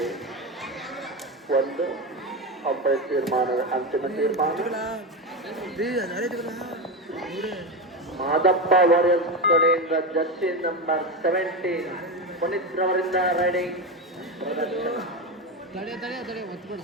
ಒಂದು ಅಂಪೈರ್ ತೀರ್ಮಾನ, ಅಂತಿಮ ತೀರ್ಮಾನ ಮಾದಪ್ಪ ವಾರಿಯರ್ಸ್ ಕಡೆಯಿಂದ ಜರ್ಸಿ ನಂಬರ್ 17 ಪುನೀತ್ ರವರಿಂದ ರೈಡಿಂಗ್ ಪ್ರದರ್ಶನ.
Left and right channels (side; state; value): both; normal; correlation 0.16